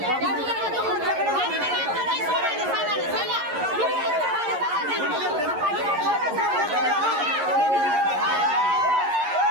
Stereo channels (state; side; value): late; left; 11 ms